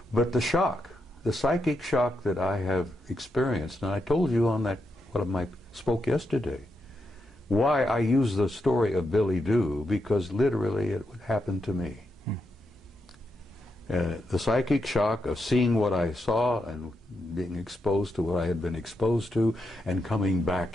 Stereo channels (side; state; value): both; normal; correlation 0.84